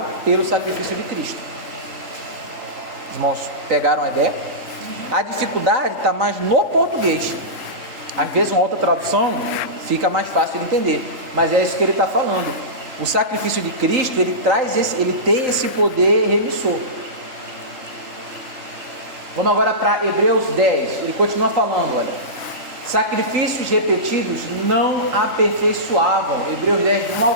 pelo sacrifício de Cristo. Os irmãos pegaram a ideia? A dificuldade está mais no português. Às vezes uma outra tradução fica mais fácil de entender, mas é isso que ele está falando. O sacrifício de Cristo, ele tem esse poder remissor. Vamos agora para Hebreus 10, ele continua falando, olha: sacrifícios repetidos não aperfeiçoavam. Hebreus 10, 1 ao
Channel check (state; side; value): late; left; 3.8 ms